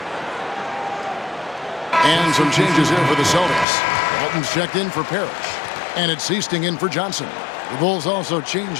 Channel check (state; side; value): drops out; right; at 3.7 s